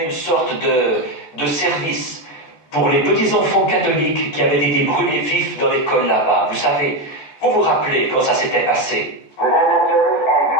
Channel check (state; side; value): late; right; 14 ms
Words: une sorte de service pour les petits-enfants catholiques qui avaient été brûlés vifs dans l'école là-bas. Vous vous rappelez quand ça s'était passé? We had that service, and